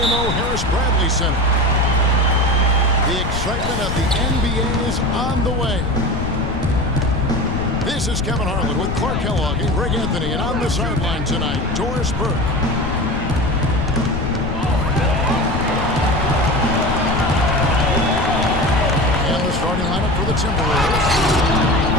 Harris Bradley Center. The excitement of the NBA is on the way. This is Kevin Harlan with Clark Kellogg and Greg Anthony, and on the sideline tonight, Doris Burke. And the starting lineup for the Timberwolves.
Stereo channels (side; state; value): left; noise; rumble, 4 dB below the sound